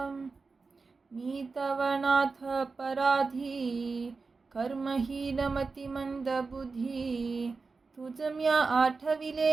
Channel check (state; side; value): quieter; left; 4.3 dB